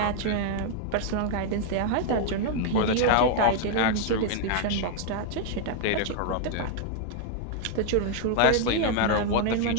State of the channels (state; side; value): different; both; correlation 0.00